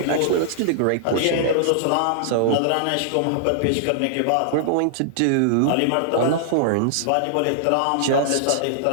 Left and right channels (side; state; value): both; different; correlation -0.01